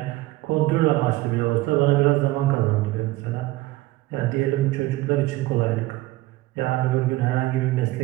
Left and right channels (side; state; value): left; quieter; 18.3 dB